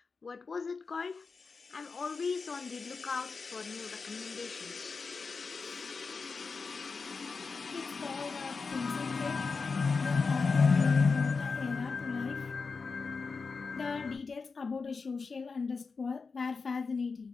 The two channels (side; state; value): right; quieter; 4.7 dB